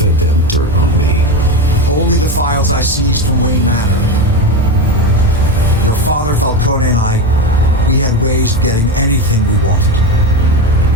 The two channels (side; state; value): both; normal; correlation 0.18